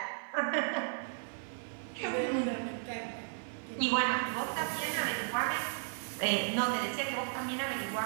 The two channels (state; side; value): silent; left; digital silence